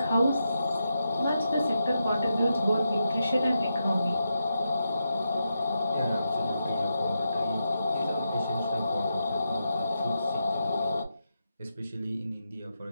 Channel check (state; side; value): inverted; both; correlation -0.86